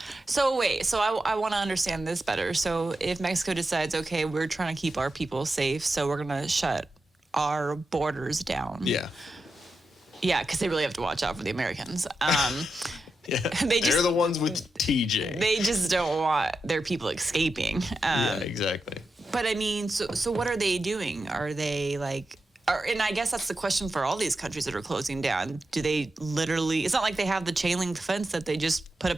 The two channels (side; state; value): both; normal; correlation 0.89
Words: So wait, I want to understand this better. So if Mexico decides, okay, we're trying to keep our people safe, so we're going to shut our borders down. Yeah. Yeah, because they really have to watch out for the Americans. Yeah, they're the ones with TJ. They just don't want their people escaping. Yeah, exactly. But I mean, so what are they doing? Are they like... and I guess that's the question for all these countries that are closing down. Do they literally... It's not like they have the chain link fence that they just put a